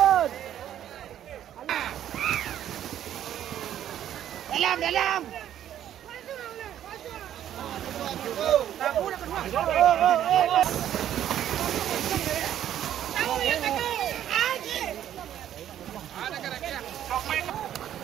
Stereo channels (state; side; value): quieter; left; 11.0 dB